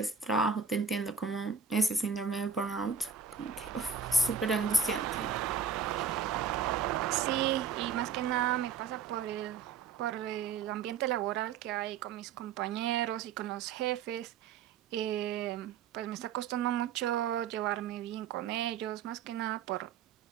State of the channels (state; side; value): quieter; left; 6.5 dB